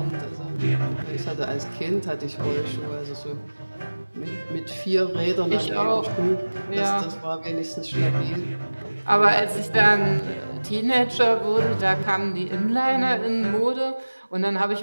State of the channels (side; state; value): both; inverted; correlation -1.00